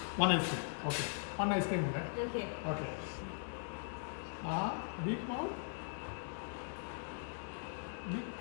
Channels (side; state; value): right; silent; digital silence